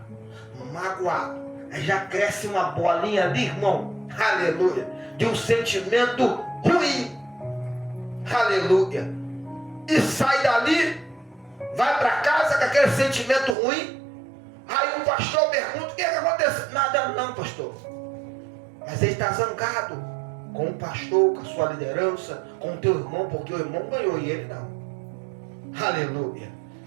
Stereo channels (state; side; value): drops out; left; at 13.6 s